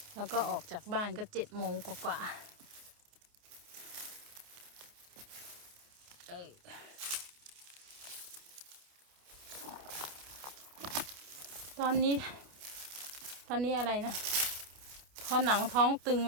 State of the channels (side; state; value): left; late; 29 ms